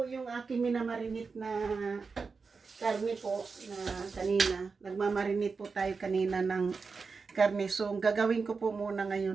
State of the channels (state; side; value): quieter; left; 4.8 dB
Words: yung aking minamarinate na karne po na kanina. Nagmamarinate po tayo kanina ng karne. So, ang gagawin ko po muna